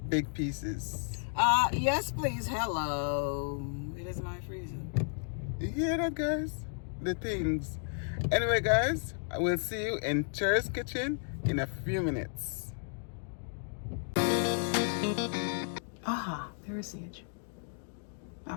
big pieces. Yes, please. Hello. It is my freezer. You hear that, guys? The things. Anyway, guys, I will see you in Cher's kitchen in a few minutes. Aha, there is Sage.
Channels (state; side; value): silent; right; 56 dB below the other